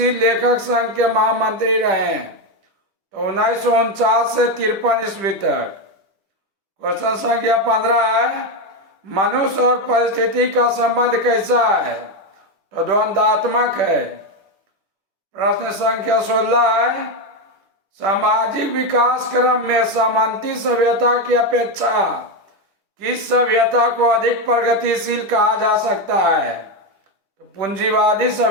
लेखक संघ के महामंत्री रहे? तो 1949 से 53 ईस्वी तक। क्वेश्चन संख्या 15 है, मनुष्य और परिस्थिति का संबंध कैसा है? तो द्वंद्वात्मक है। प्रश्न संख्या 16 है, सामाजिक विकास क्रम में सामंती सभ्यता की अपेक्षा किस सभ्यता को अधिक प्रगतिशील कहा जा सकता है? तो पूंजीवादी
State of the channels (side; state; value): left; late; 10 ms